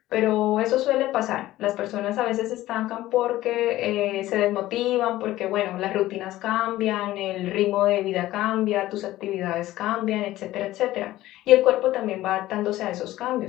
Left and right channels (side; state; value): right; quieter; 15.7 dB